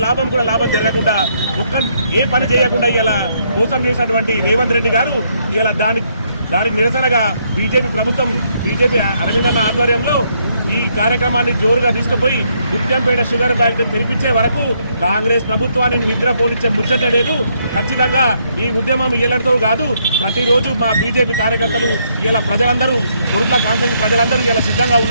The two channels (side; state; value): both; inverted; correlation -0.73